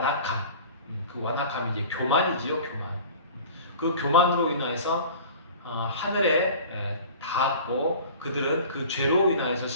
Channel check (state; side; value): inverted; both; correlation -0.42